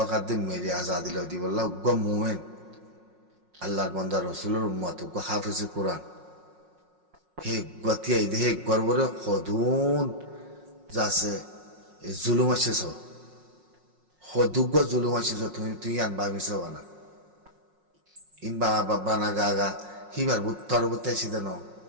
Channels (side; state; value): left; late; 5.5 ms